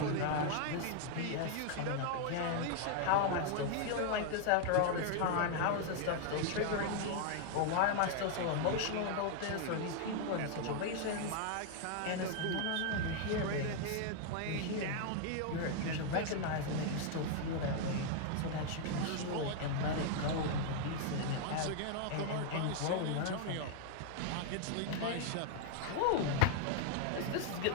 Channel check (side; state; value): both; different; correlation 0.00